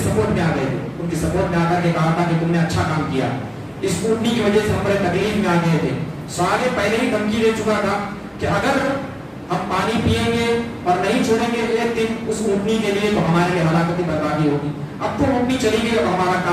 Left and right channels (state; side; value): identical; both; correlation 1.00